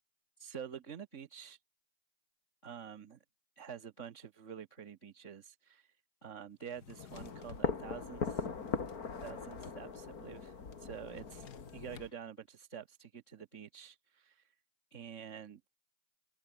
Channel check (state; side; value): late; right; 3.6 ms